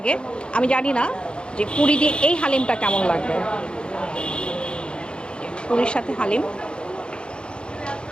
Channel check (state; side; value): late; right; 0.054 ms